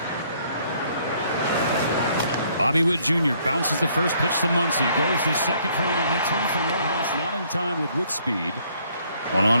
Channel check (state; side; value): inverted; both; correlation -0.65